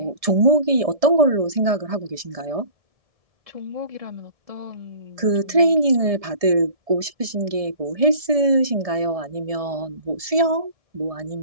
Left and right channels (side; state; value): left; late; 1.7 ms